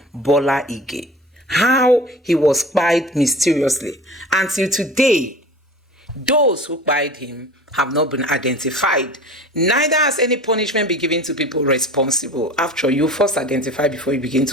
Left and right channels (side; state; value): both; normal; correlation 0.39